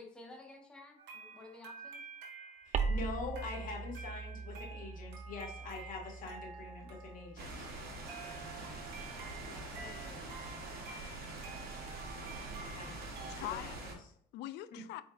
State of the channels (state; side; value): normal; both; correlation 0.41